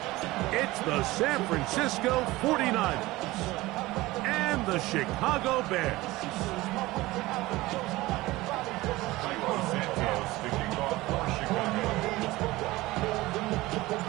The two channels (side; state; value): left; quieter; 19.2 dB